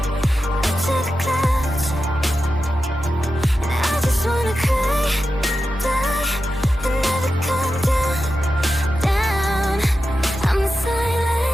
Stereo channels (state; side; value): normal; both; correlation 0.91